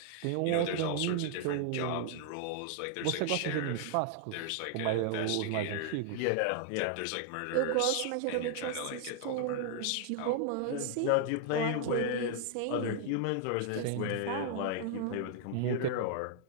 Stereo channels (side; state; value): both; different; correlation 0.00